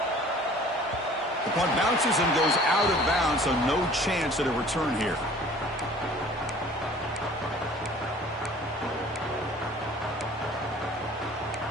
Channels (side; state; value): both; normal; correlation 0.49